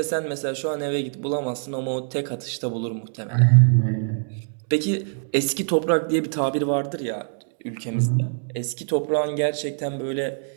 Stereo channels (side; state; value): left; silent; 63 dB below the other